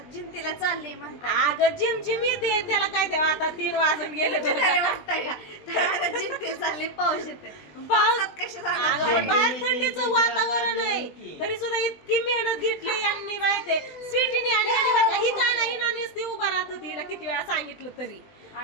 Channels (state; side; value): late; right; 20 ms